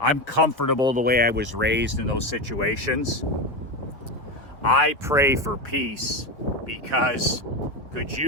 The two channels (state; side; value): normal; both; correlation 0.16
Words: comfortable the way I was raised in those situations. I pray for peace because could